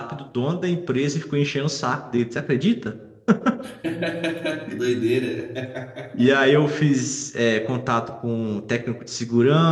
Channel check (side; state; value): both; identical; correlation 1.00